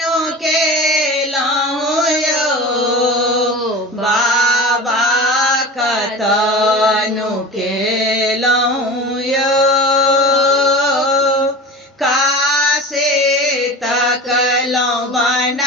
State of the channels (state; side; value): normal; both; correlation 0.33